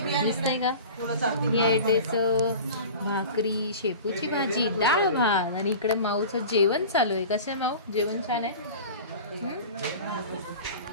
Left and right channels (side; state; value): both; inverted; correlation -0.37